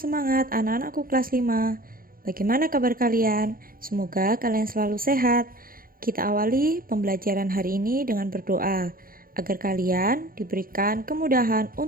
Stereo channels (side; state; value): left; late; 0.42 ms